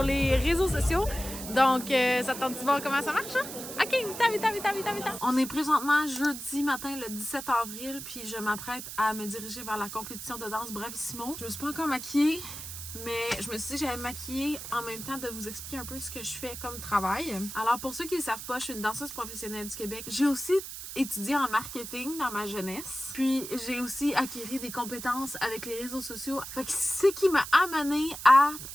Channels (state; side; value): noise; right; hiss, 9 dB below the sound